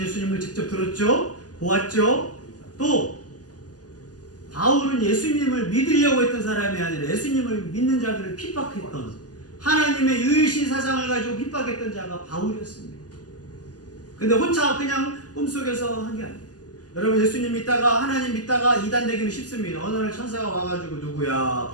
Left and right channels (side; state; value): right; late; 0.68 ms